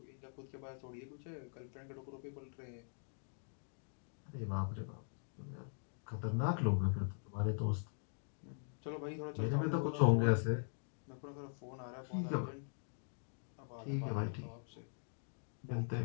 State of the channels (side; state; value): right; silent; digital silence